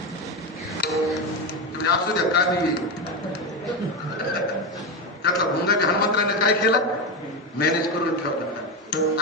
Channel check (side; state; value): both; normal; correlation 0.15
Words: असू द्या का नाही त्यातला भुंगा हनुमंतराने काय केला? मॅनेज करून ठेवला.